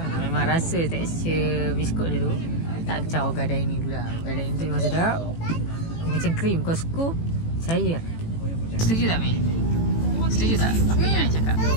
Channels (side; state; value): right; late; 18 ms